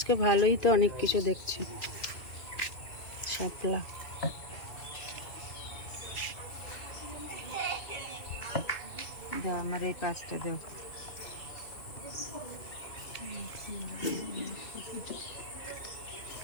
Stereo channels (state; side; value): late; right; 2.5 ms